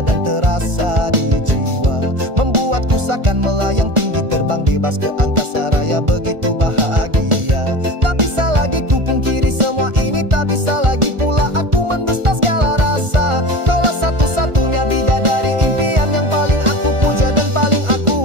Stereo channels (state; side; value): late; left; 1.4 ms